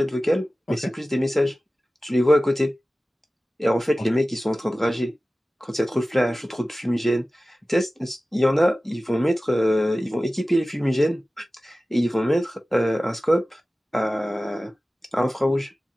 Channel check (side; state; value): both; normal; correlation 0.96